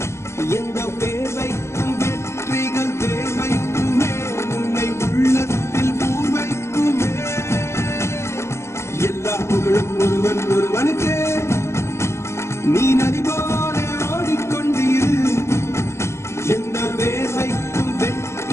எந்த பேர்வைக்கும் வெற்றிகள் பேர்வைக்குமே உன்னை உள்ளத்தில் பூர்வைக்குமே எல்லா புகழும் ஒருவன் ஒருவனுக்கே நீ நதி போல ஓடிக்கொண்டீர் எந்த பேர்வைக்கும்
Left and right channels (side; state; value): right; late; 0.13 ms